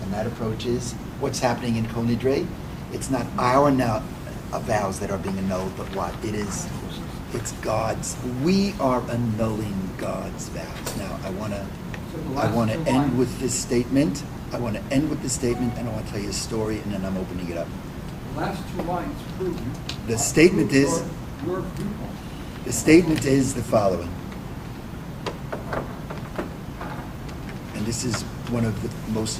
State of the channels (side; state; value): both; identical; correlation 1.00